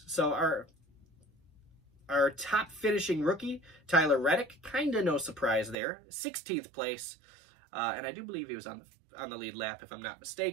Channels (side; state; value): left; drops out; at 5.8 s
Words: So our top finishing rookie, Tyler Reddick, kind of no surprise there. 16th place. And I do believe he was on the lead lap, if I'm not